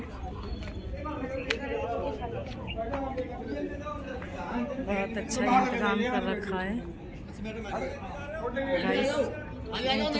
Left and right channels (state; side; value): identical; both; correlation 1.00